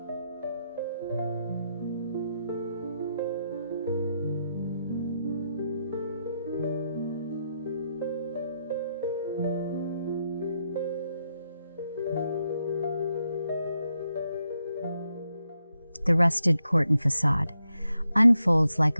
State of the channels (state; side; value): inverted; both; correlation -0.82